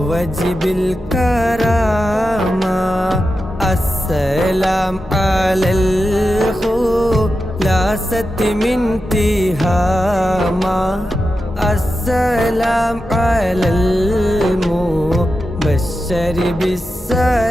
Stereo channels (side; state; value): both; normal; correlation 0.90